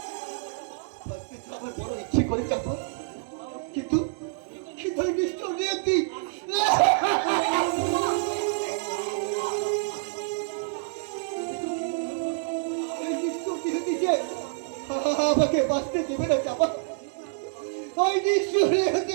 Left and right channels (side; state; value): left; silent; digital silence